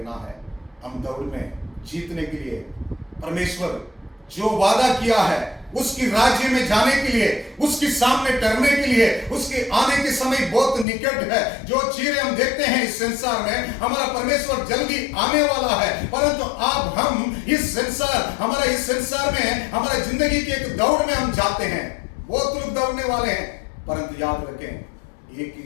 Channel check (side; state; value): right; drops out; at 10.9 s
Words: है। हम दौड़ में जीतने के लिए परमेश्वर जो वादा किया है, उसकी राज्य में जाने के लिए, उसके सामने टरने के लिए, उसके आने के समय बहुत निकट है। जो चीजें हम देखते हैं इस संसार में, हमारा परमेश्वर जल्दी आने वाला है, परंतु आप हम इस संसार में हमारा जिंदगी की एक दौड़ में हम जाते हैं। बहुत लोग दौड़ने वाले हैं, परंतु याद रखें एक